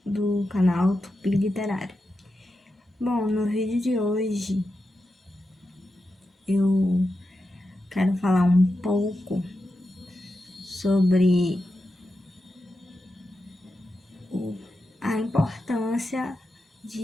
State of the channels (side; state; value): both; normal; correlation 0.89